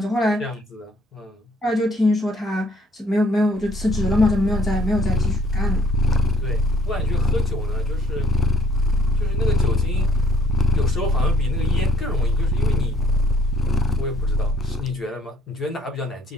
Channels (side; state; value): both; normal; correlation 0.65